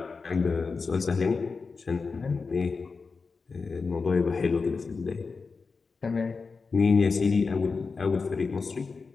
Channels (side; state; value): right; quieter; 4.6 dB